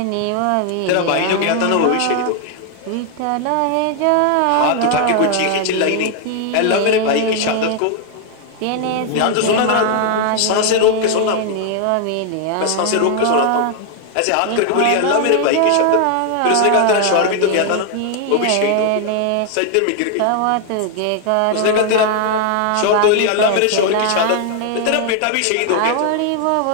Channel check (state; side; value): different; both; correlation 0.00